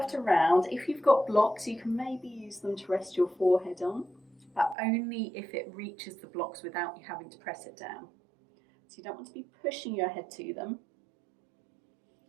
to round. If you've got blocks, you can maybe use them to rest your forehead on, but only if it reaches the blocks without you having to press it down. So you don't want to be pushing your head to them.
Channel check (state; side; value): drops out; left; at 4.8 s